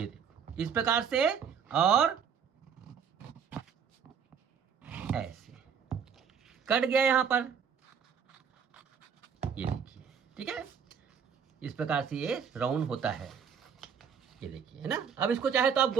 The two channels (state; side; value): quieter; left; 7.1 dB